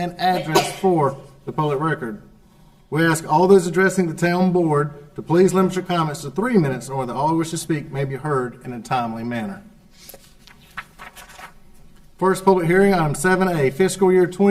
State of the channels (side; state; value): both; identical; correlation 1.00